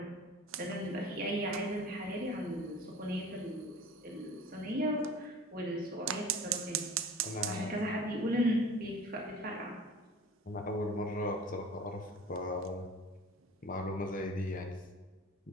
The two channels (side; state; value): both; normal; correlation 0.42